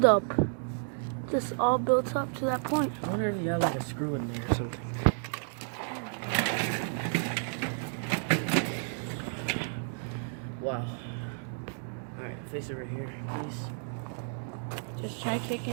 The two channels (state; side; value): silent; left; digital silence